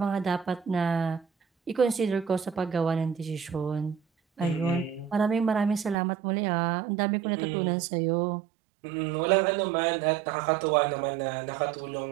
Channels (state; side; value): drops out; left; at 6.0 s